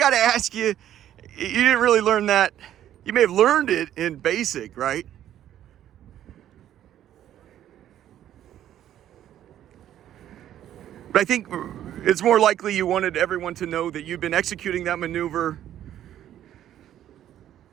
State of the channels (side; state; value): left; quieter; 11.5 dB